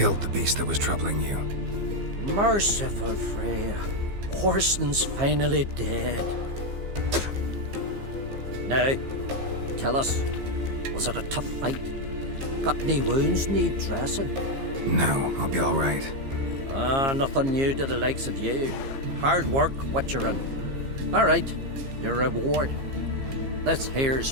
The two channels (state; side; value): late; left; 15 ms